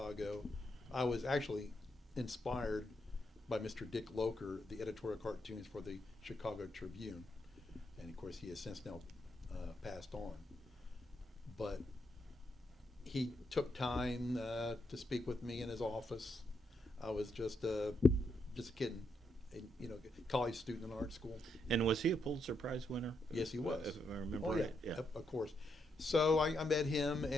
I was actually inspired by Mr. Dick Loker, the editorial cartoons for the Chicago Tribune, and of course he has since now passed on. But he took time to speak with me in his office. I was just a kid, college student in art school. And was he a Pulitzer Prize winner? Yes, he was. If I remember right. Yeah, of course. So I met him,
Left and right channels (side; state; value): both; normal; correlation 0.80